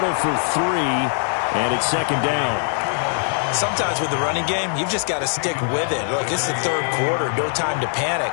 for 3, and it's 2nd down. Sometimes with the running game, you've just got to stick with it. Look, it's the 3rd quarter, no time to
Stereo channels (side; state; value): right; silent; 57 dB below the other